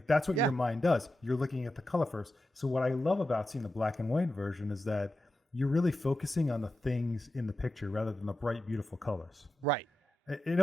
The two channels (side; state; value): both; normal; correlation 0.90